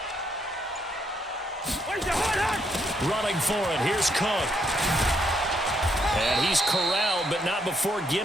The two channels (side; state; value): both; normal; correlation 0.74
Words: Running for it. Here's Cook. And he's corralled, but not before